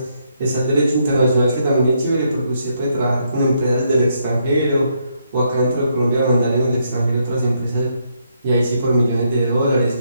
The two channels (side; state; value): both; inverted; correlation -0.76